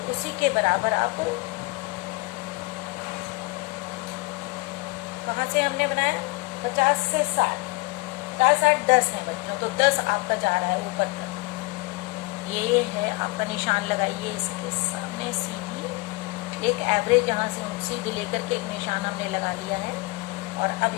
उसी के बराबर आप, कहाँ से हमने बनाया? 50 से 60, 50, 60, 10 है बच्चों। तो 10 आपका जा रहा है ऊपर तक। ये है आपका निशान लगाइए इसके सामने सीधी, एक एवरेज यहाँ से सीधी लेकर के एक निशान हमने लगा लिया है। और अब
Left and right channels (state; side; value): quieter; right; 24.2 dB